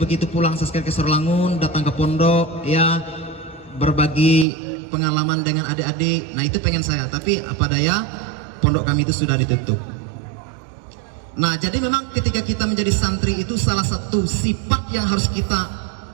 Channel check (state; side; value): drops out; left; at 4.5 s